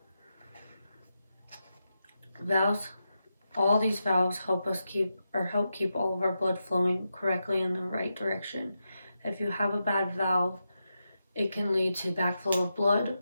Valves, all these valves help keep all of our blood flowing correctly in the right direction. If you have a bad valve, it can lead to backflow of blood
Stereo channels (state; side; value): inverted; both; correlation -0.88